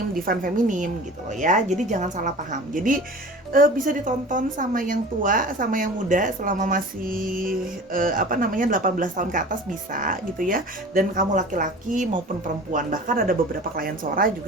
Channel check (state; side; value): normal; both; correlation 0.39